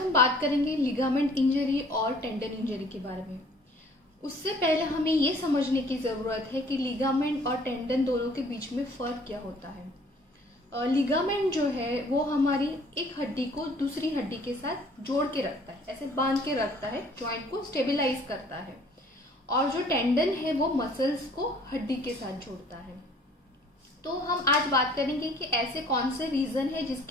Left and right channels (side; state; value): both; normal; correlation 0.55